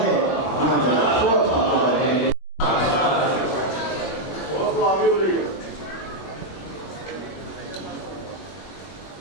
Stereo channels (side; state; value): right; late; 21 ms